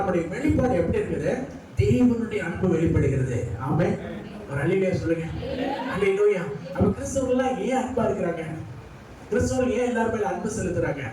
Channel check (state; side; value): identical; both; correlation 1.00